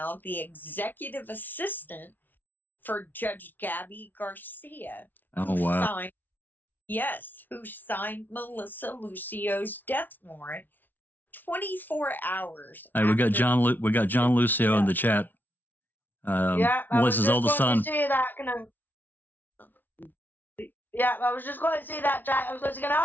the executive assistant for Judge Gabby Garcia. Oh, wow. Who signed Melissa Lucio's death warrant 24 hours. Hey, we got John Lucio in the chat. Melissa's oldest son. I was just going to say that, Jack. I was going to say, can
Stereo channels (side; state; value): right; late; 0.087 ms